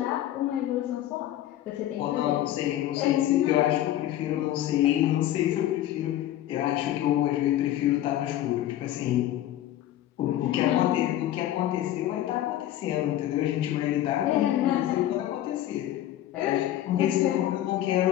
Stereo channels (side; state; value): right; quieter; 13.0 dB